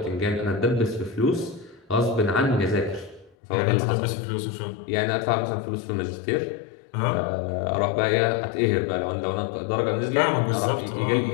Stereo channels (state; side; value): drops out; right; at 3.4 s